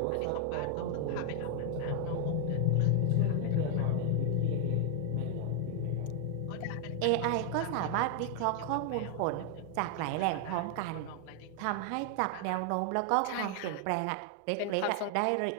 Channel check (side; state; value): both; different; correlation 0.00